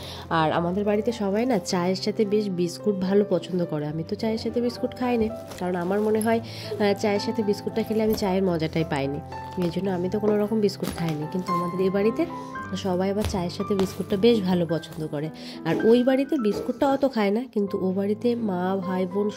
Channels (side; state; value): both; identical; correlation 1.00